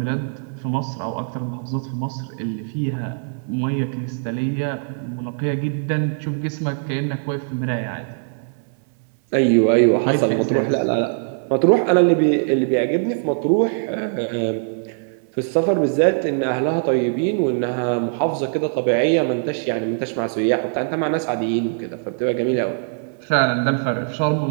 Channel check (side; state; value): left; silent; 61 dB below the other